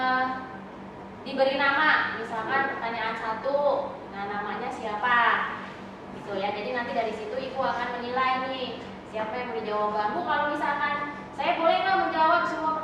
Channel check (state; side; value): identical; both; correlation 1.00